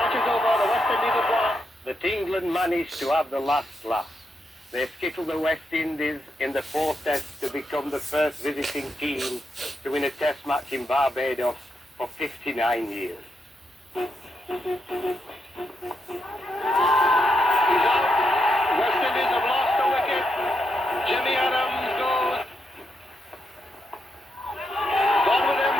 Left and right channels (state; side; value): normal; both; correlation 0.82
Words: is over. The West Indies have won. That England managed to have the last laugh. They skittled the West Indies in the 4th test to become the first visiting team to win a test match in Barbados for 59 years. He's out. West Indies have lost a wicket. Jimmy Adams goes. Gone with him.